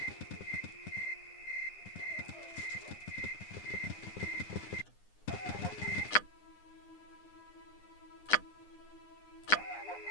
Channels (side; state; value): right; late; 9.8 ms